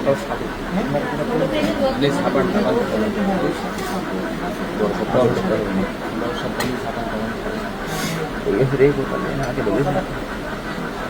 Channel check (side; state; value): both; identical; correlation 1.00